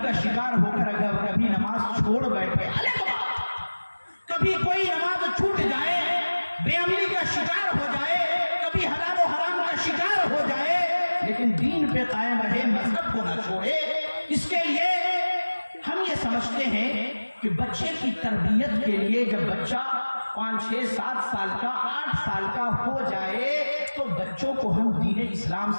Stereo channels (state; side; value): inverted; both; correlation -1.00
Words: کا شکار ہو کر اگر کبھی نماز چھوڑ بیٹھے، کبھی کوئی نماز چھوٹ جائے، بے عملی کا شکار ہو جائے، کبھی حلال و حرام کا شکار ہو جائے، لیکن دین پہ قائم رہے، مذہب کو نہ چھوڑے. اس کے لیے ہم یہ سمجھتے ہیں کہ بچے کی تربیت کے لیے جب بچہ 5 6 7 سال کا 8 سال کا ہو جائے تو بچوں کو ہم دین اسلام